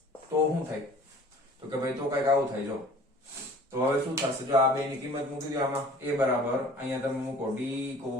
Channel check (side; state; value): both; normal; correlation 0.48